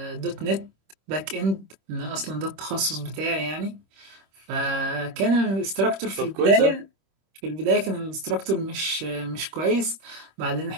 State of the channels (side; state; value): left; late; 26 ms